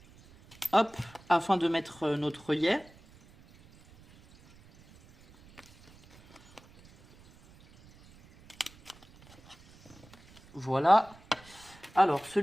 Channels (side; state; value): right; noise; rumble, 25 dB below the sound